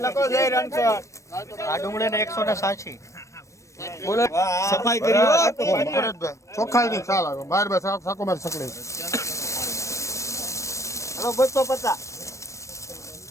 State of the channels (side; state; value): right; late; 0.15 ms